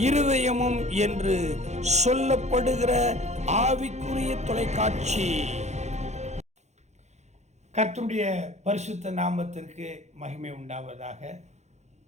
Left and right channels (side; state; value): left; late; 0.33 ms